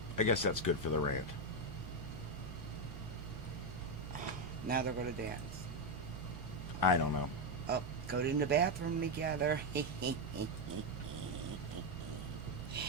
I guess that's good for the rant. Now they're going to dance. I don't know. Oh, go in the bathroom together. Oh,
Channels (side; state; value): both; normal; correlation 0.05